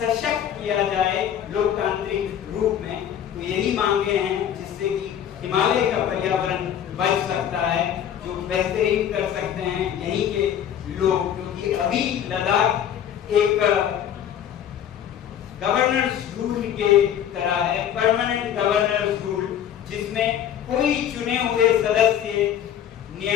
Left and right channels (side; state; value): right; quieter; 9.9 dB